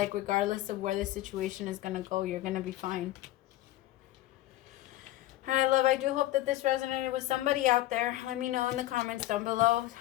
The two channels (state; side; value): quieter; right; 15.7 dB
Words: regardless of where the situation is going to go, you're going to be fine. All right, love, I do hope that this resonated with somebody out there. Let me know in the comments down below.